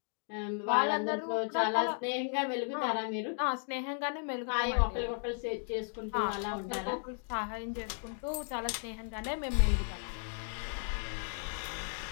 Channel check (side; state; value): right; silent; 55 dB below the other